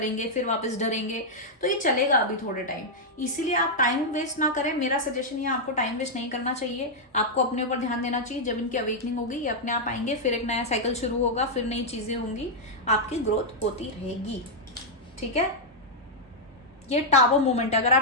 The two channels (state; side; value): normal; both; correlation -0.04